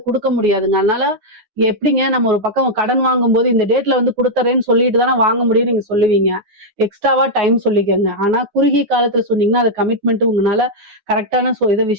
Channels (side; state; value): left; late; 9.5 ms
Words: கொடுக்க முடியாதுங்க. அதனால எப்படிங்க நம்ம ஒரு பக்கம் கடன் வாங்கும்போது இந்த டேட்ல வந்து கொடுத்துறேன்னு சொல்லிட்டு தானே வாங்க முடியும் நீங்க சொல்லுவீங்க. எக்ஸ்ட்ராவா டைம் சொல்லிக்கங்க. ஆனா குறுகிய காலத்துல சொன்னீங்கன்னா அது கமிட்மெண்ட் உங்களால கரெக்டான இதை